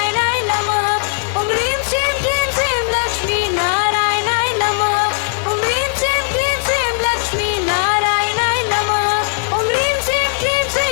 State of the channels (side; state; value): right; silent; digital silence